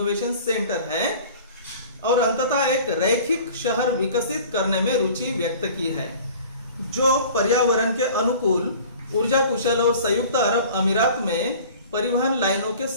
सेंटर है और अंततः एक रैखिक शहर विकसित करने में रुचि व्यक्त की है, जो पर्यावरण के अनुकूल, ऊर्जा कुशल और संयुक्त अरब अमीरात में परिवहन लाइनों के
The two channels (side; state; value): both; inverted; correlation -0.45